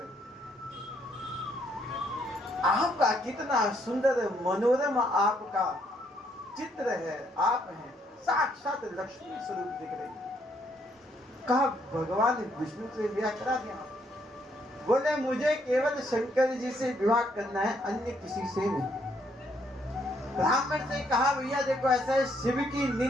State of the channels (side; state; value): both; normal; correlation 0.71